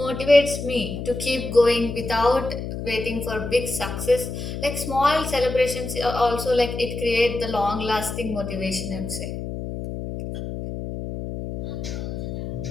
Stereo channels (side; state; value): left; noise; hum, 6 dB below the sound